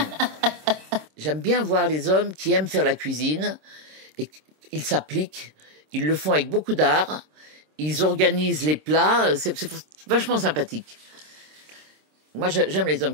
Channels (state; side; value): late; left; 26 ms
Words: J'aime bien voir les hommes qui aiment faire la cuisine et ils s'appliquent, ils le font avec beaucoup d'art, ils organisent les plats, c'est vachement sympathique. Moi, j'aime les hommes